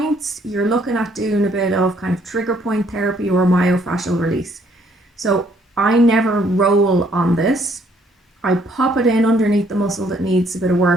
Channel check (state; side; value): normal; both; correlation 0.66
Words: You're looking at doing a bit of kind of trigger point therapy or myofascial release. So I never roll on this. I pop it in underneath the muscle that needs a bit of